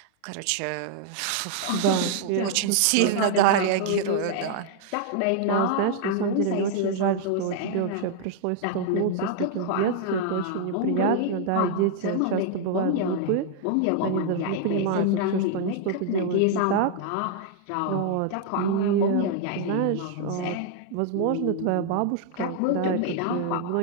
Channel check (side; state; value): both; different; correlation 0.00